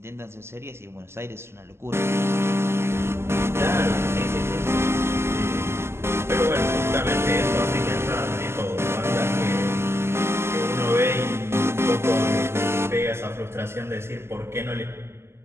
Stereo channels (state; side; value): late; left; 0.12 ms